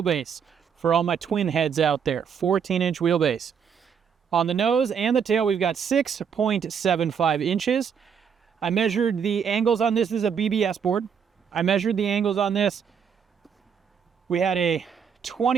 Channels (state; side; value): quieter; left; 7.2 dB